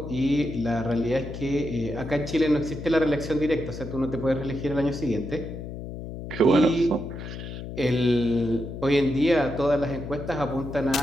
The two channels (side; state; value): left; noise; hum, 9 dB below the sound